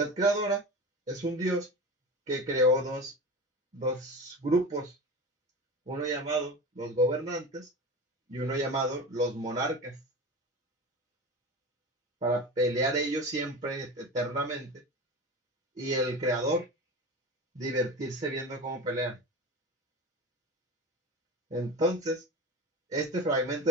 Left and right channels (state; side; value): normal; both; correlation 0.29